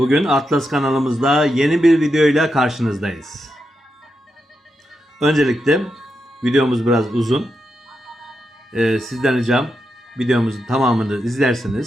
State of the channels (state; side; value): normal; both; correlation 0.86